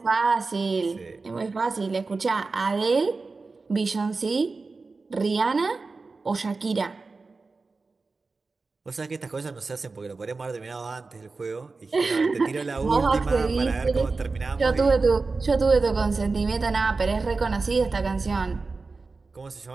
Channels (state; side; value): quieter; left; 4.0 dB